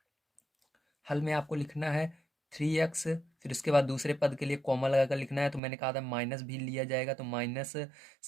में आपको लिखना है 3x। फिर उसके बाद दूसरे पद के लिए कॉमा लगाकर लिखना है। तो मैंने कहा था माइनस भी लिया जाएगा, तो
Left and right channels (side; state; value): left; drops out; at 5.6 s